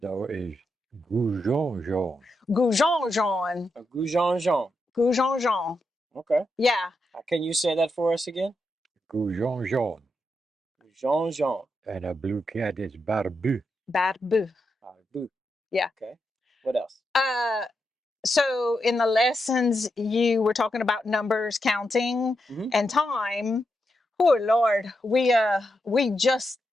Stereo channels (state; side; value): normal; both; correlation 0.85